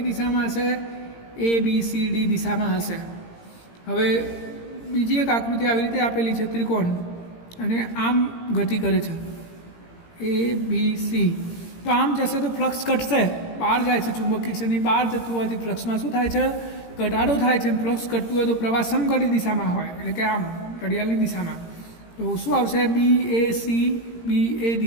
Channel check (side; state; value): right; late; 17 ms